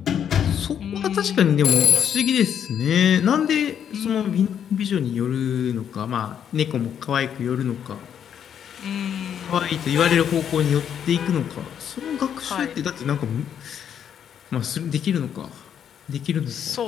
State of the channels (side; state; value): right; quieter; 8.8 dB